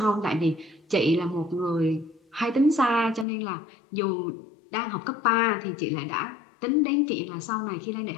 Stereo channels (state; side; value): drops out; right; at 3.2 s